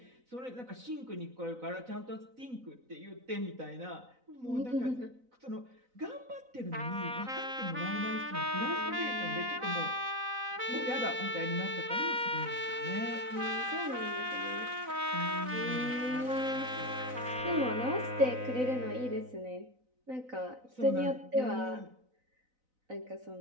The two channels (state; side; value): late; left; 4.0 ms